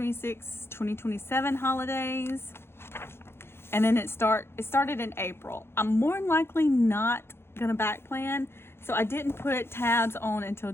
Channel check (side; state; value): right; late; 0.12 ms